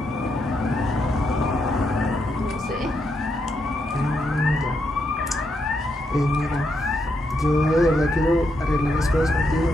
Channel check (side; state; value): both; normal; correlation 0.80